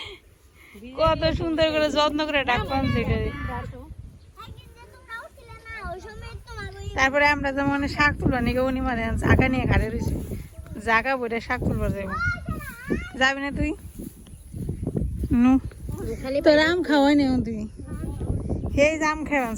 কত সুন্দর করে যত্ন করে ডাক পানছে এটা। তারপরে আমরা যেমন শাক তুলবা নিকে উনি মানে জাগা নিয়ে ঘাড়ে রয়েছে, জাগা বইটা শাক তুলবার যাইব। যাবি না তুই? নু তোর আম খাওয়াই নি তুই, সেই আম খাওয়াছ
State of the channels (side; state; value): both; identical; correlation 1.00